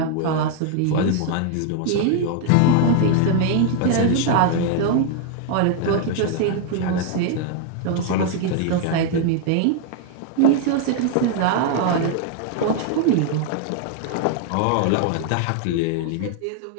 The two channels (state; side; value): different; both; correlation 0.00